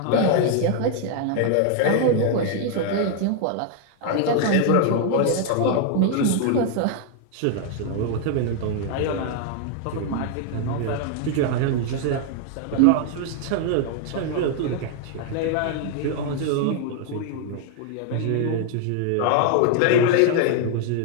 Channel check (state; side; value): different; both; correlation 0.00